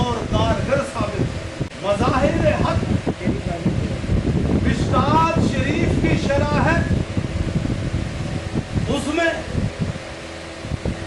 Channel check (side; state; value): both; identical; correlation 1.00